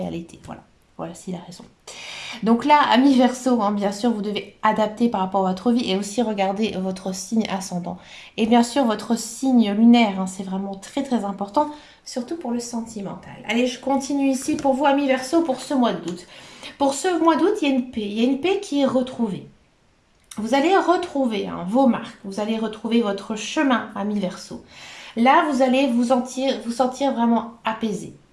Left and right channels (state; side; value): identical; both; correlation 1.00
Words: à l'été. Voilà, voilà, c'est la raison. Donc là, ami Verseau, hein, bien sûr, vous devez adapter par rapport à votre vie et aussi regarder votre signe ascendant. Et bien sûr, votre signe lunaire, hein, c'est vraiment très très important, surtout pour le sentimental. Allez, je continue ici pour vous, ami Verseau, pour ce mois d'août. Pour ce mois d'août, il y a une paix. Il y a une paix qui est retrouvée. Vous allez retrouver hein, vos marques, vous allez retrouver votre chemin, ami Verseau. Là, vous allez vous sentir vraiment apaisé.